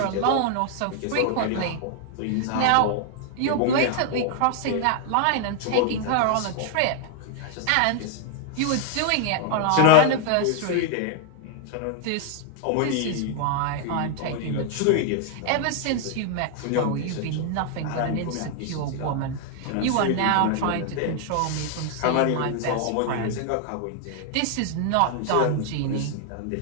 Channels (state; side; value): different; both; correlation 0.00